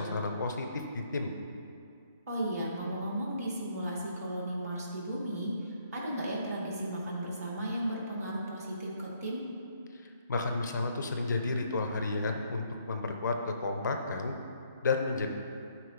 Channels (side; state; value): both; inverted; correlation -0.69